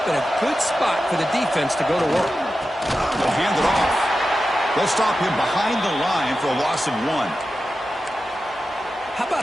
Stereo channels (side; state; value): both; normal; correlation 0.92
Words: in a good spot for the defense to go to work. They'll hand it off. They'll stop him behind the line for a loss of 1. How